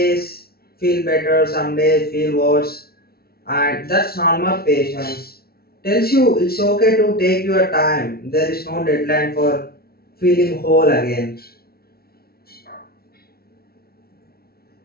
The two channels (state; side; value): late; right; 0.44 ms